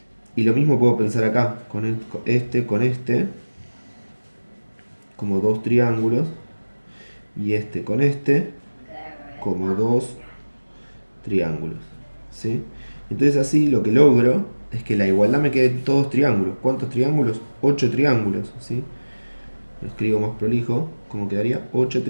Y lo mismo puedo pensar acá, con este, como dos triángulos. Y este con este, como dos triángulos. ¿Sí? Entonces así lo que logro es que la igualdad me quede todos triángulos. ¿Cuántos triángulos? 8 triángulos. ¿Sí? Lo escribo más prolijo, como quedaría: 8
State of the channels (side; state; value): both; inverted; correlation -1.00